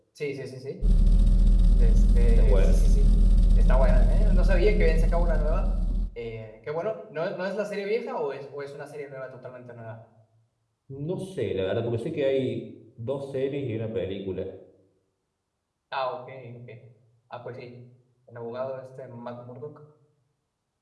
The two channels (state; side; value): identical; both; correlation 1.00